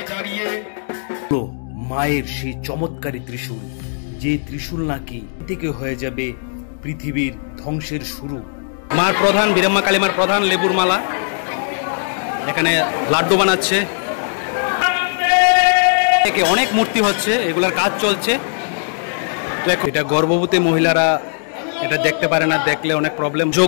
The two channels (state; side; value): silent; right; digital silence